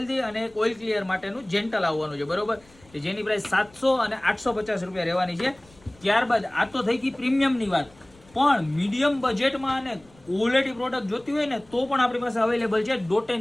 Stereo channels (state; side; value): noise; left; rumble, 28 dB below the sound